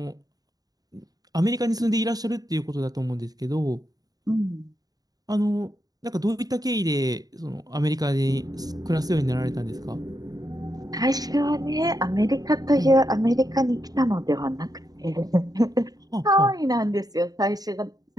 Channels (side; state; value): left; late; 0.18 ms